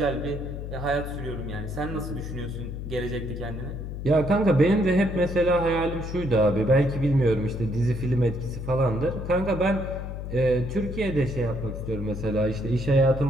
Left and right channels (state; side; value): noise; left; hum, 7 dB below the sound